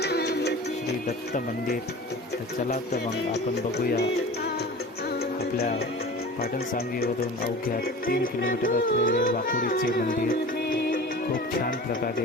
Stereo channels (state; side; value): normal; both; correlation 0.37